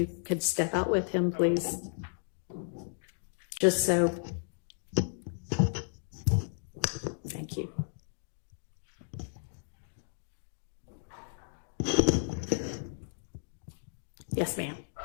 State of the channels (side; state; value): right; silent; digital silence